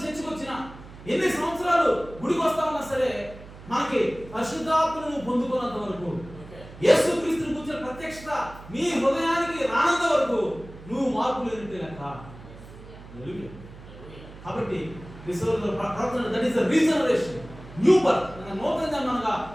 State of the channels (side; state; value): right; noise; hum, 17 dB below the sound